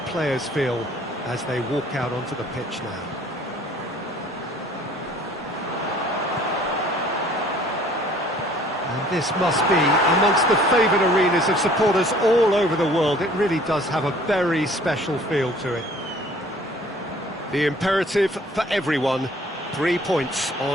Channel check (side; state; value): both; normal; correlation 0.54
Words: feel as they walk out onto the pitch now. And this must be amongst the favoured arenas of supporters all over the world. It really does have a very special feel to it. The imperative for everyone, 3 points